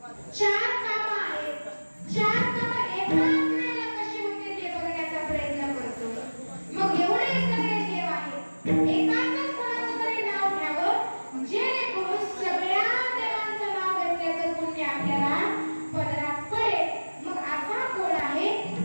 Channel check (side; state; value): both; inverted; correlation -1.00